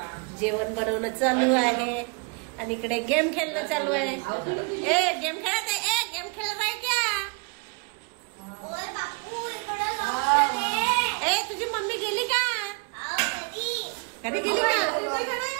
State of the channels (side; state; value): left; quieter; 31.6 dB